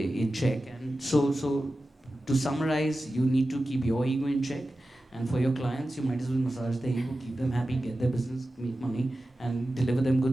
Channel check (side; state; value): both; normal; correlation 0.94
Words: so to summarize, you need to keep your ego in check. And for your clients, you might as well massage their ego, keep them happy, get their business, make money, and deliver them